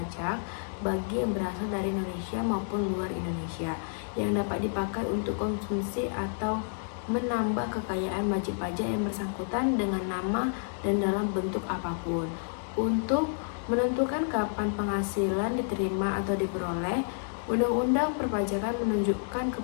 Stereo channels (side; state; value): right; silent; digital silence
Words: bagi yang berasal dari Indonesia maupun luar Indonesia yang dapat dipakai untuk konsumsi atau menambah kekayaan wajib pajak yang bersangkutan dengan nama dan dalam bentuk apapun. Untuk menentukan kapan penghasilan diterima atau diperoleh, Undang-Undang Perpajakan menunjukkan